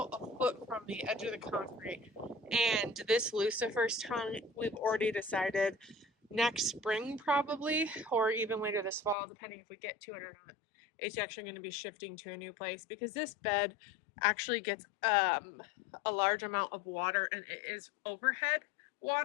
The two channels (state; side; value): drops out; right; at 9.2 s